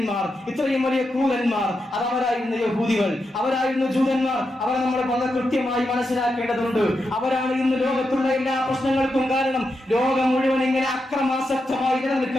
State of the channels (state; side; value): normal; both; correlation 0.86